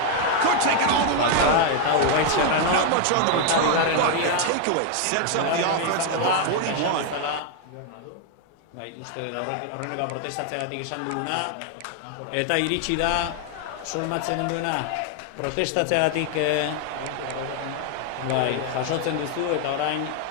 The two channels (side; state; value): both; different; correlation 0.01